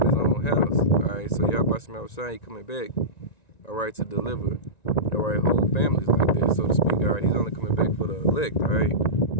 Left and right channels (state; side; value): late; right; 1.9 ms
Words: his own house. Alright, so Yahweh Shema Shai coming back, alright, to deliver, alright, whole families like this, so to speak. Alright, he's only coming back for the elect, alright.